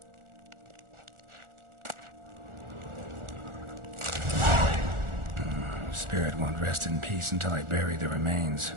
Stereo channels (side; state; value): left; late; 1.4 ms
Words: Spirit won't rest in peace until I bury the remains.